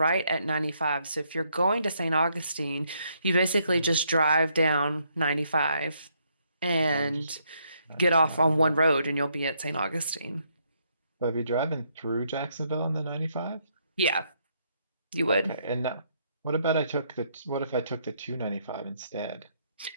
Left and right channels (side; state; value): both; inverted; correlation -0.73